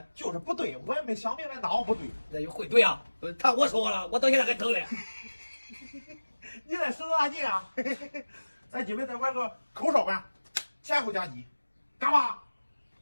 就是不对，我也没想明白哪不对。那就会对啊！他我说了，我到现在还疼嘞。你在使多大劲啊？咱今晚再玩个口哨管，前后夹击，干嘛？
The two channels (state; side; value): inverted; both; correlation -1.00